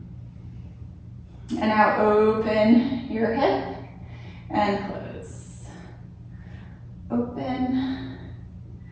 And now open your hip and close. Open.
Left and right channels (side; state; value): both; identical; correlation 1.00